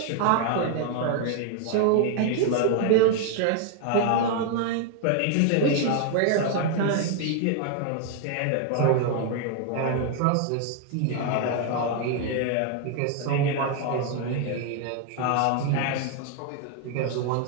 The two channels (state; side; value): different; both; correlation 0.00